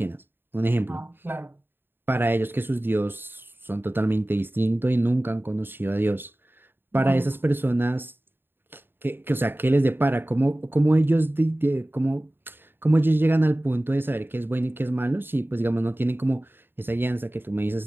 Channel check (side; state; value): left; late; 0.10 ms